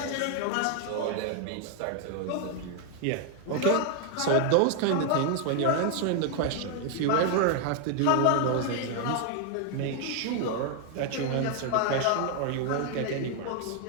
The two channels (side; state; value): both; different; correlation 0.00